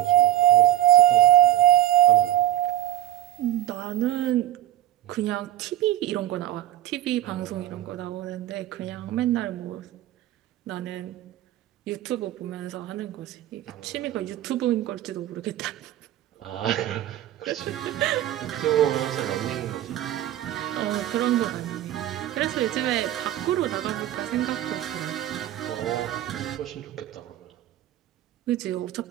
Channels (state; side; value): quieter; left; 13.5 dB